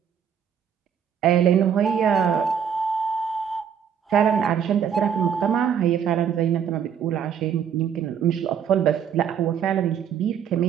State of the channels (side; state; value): left; quieter; 8.0 dB